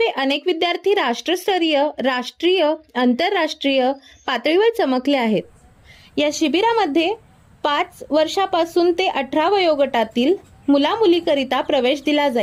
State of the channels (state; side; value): identical; both; correlation 1.00